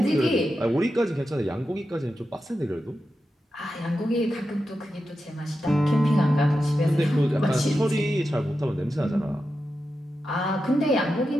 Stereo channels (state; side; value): normal; both; correlation 0.90